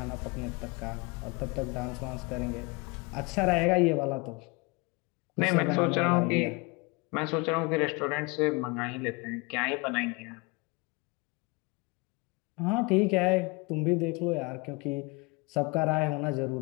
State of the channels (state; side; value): quieter; right; 27.2 dB